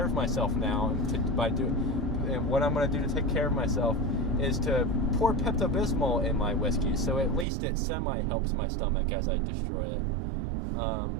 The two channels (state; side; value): drops out; left; at 7.5 s